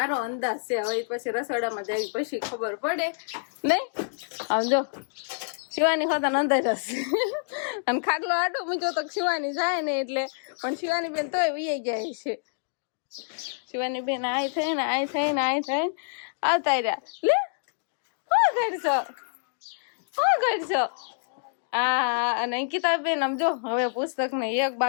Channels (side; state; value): right; silent; digital silence